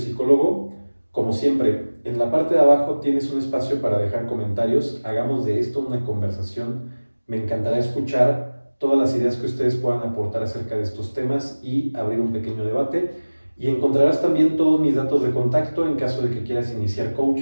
Como siempre, en la parte de abajo tienes un espacio para dejar comentarios. Hagamos de esto una conversación. Me encantará escuchar todas las ideas que ustedes puedan aportar acerca de estos temas y abrir un pequeño debate. Y encontrarás también todos mis datos de contacto en caso de que quieras iniciar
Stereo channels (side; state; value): both; inverted; correlation -1.00